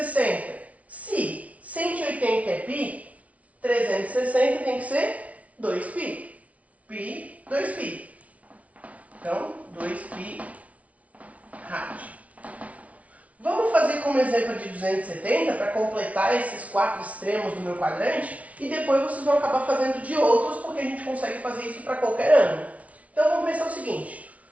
Se 180 é pi, 360 tem que ser 2π. Pi, 2π. Então, 2π rádio. Vamos fazer como exemplo de 270 para completar esses 4 extremos do meu quadrante e depois vocês vão acabar fazendo de outros porque a gente consegue fazer isso para qualquer ângulo. Então vamos pensar o seguinte,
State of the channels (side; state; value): left; late; 0.067 ms